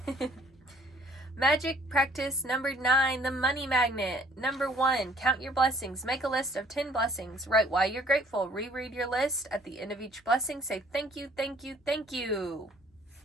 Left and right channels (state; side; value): normal; both; correlation 0.58